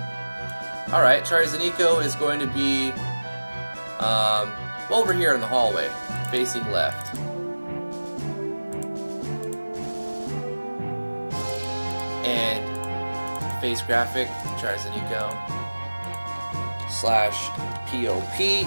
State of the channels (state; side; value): inverted; both; correlation -1.00